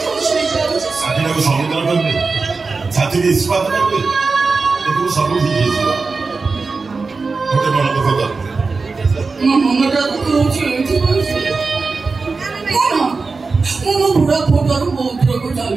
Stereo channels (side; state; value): left; quieter; 4.2 dB